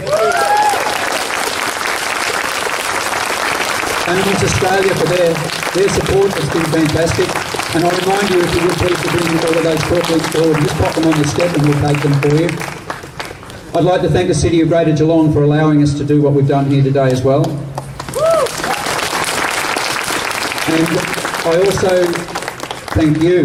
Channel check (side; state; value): both; identical; correlation 1.00